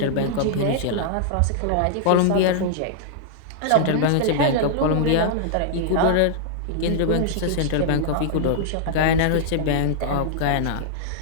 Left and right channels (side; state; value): both; different; correlation -0.01